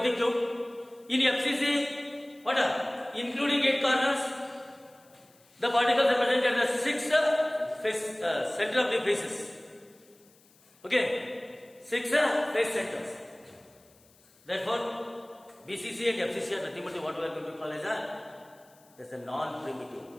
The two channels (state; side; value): noise; left; hiss, 30 dB below the sound